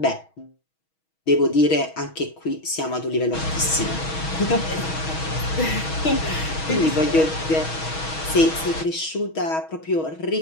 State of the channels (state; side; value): late; right; 6.3 ms